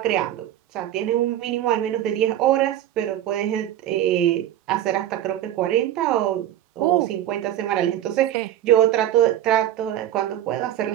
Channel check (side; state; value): left; quieter; 12.1 dB